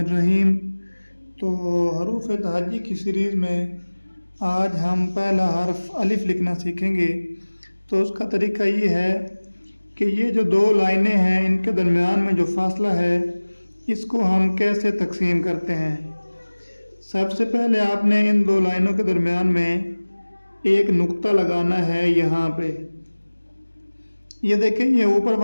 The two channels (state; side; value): inverted; both; correlation -1.00